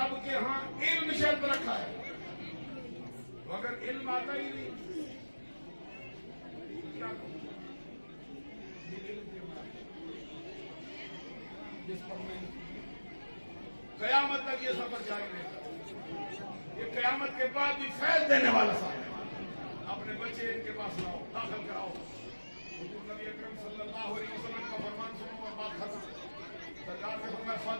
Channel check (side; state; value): both; inverted; correlation -1.00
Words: کے ہاں علم شرط رکھا ہے۔ اگر علم آتا ہی نہیں کیا کروں؟ یہ علم کے بعد جس پر میں قیامت تک یہ سفر جاری رہے گا، یہ قیامت کے بعد بھی فیض دینے والا صاحب۔ اپنے بچے ان کے پاس لاؤ، داخل کراؤ، حضور نبی اکرم صلی اللہ علیہ وسلم کا فرمان سنو اور بات ختم۔ سرکار نے فرمایا